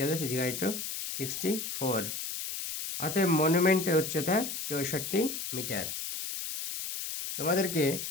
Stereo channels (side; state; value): left; noise; hiss, 5 dB below the sound